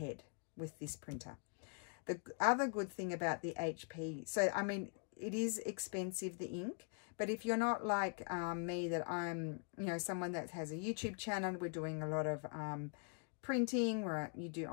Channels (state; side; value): quieter; right; 38.7 dB